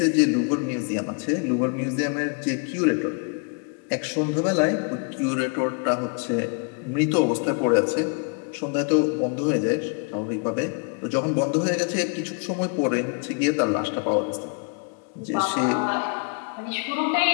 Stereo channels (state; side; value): quieter; right; 39.2 dB